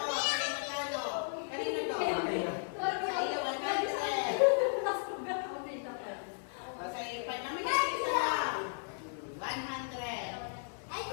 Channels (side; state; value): right; silent; digital silence